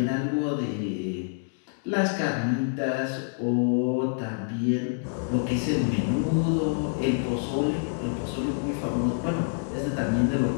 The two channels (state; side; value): silent; right; digital silence